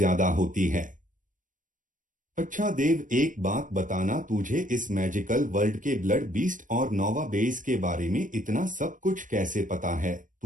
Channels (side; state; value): left; late; 0.38 ms